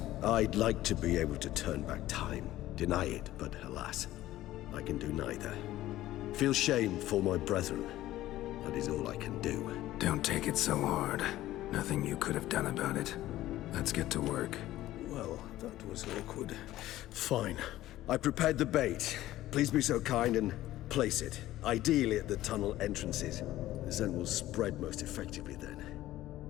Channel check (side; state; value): right; quieter; 15.0 dB